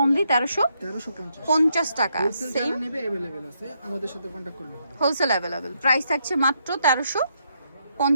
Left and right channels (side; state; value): both; inverted; correlation -0.77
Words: অনলি 1350 টাকা। সেম নেবে अवेलेबल আছে, আমাদের সাথে কন্টাক্ট করলে হবে। Wholesale available. প্রাইস থাকছে মাত্র